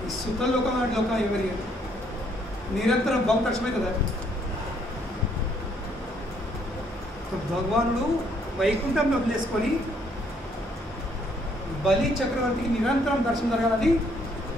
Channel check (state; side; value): normal; both; correlation 0.68